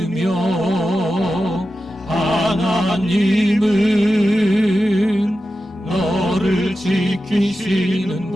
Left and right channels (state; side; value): normal; both; correlation 0.92